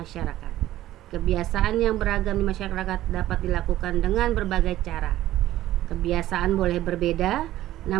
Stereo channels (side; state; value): left; quieter; 14.4 dB